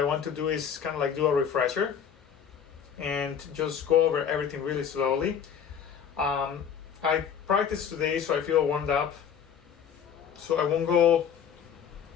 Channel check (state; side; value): quieter; right; 7.8 dB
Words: want to do is kind of like do a refresher and just go over everything really slowly. I practiced today, so I feel warmed up. So I won't go,